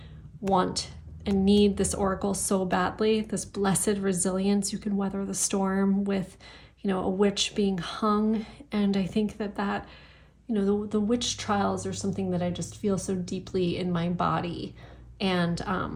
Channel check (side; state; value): both; identical; correlation 1.00